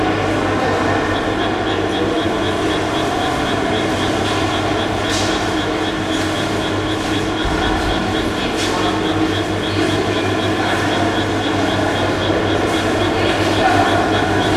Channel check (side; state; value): both; identical; correlation 1.00